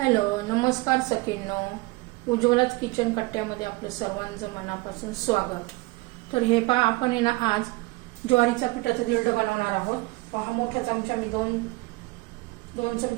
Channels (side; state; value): left; quieter; 23.1 dB